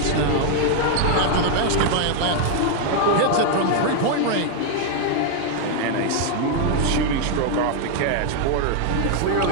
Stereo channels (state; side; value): different; both; correlation 0.00